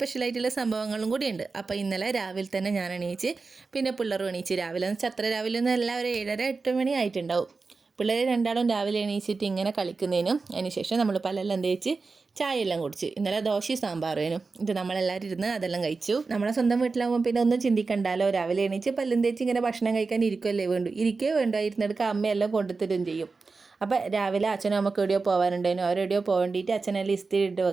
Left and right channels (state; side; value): quieter; left; 4.2 dB